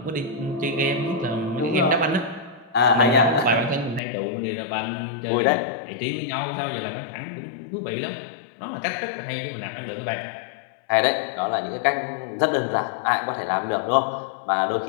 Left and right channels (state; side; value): drops out; right; at 4.0 s